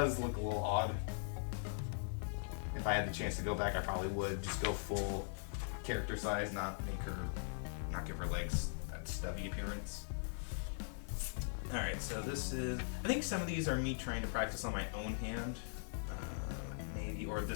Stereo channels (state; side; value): silent; right; digital silence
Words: look a little odd. If I had the chance to go back, I probably would just go full character size, not give her legs that stubby appearance. Alright, so this is, I think some of these are me trying to practice on my own hand, maybe, or